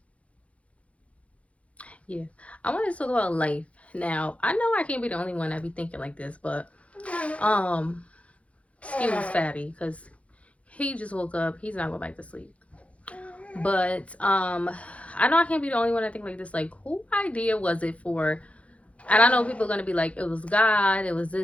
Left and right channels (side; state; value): right; late; 0.064 ms